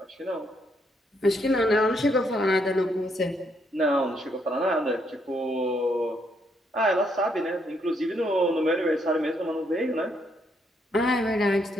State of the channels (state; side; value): normal; both; correlation 0.74